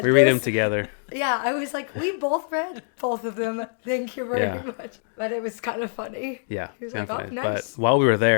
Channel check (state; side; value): silent; right; digital silence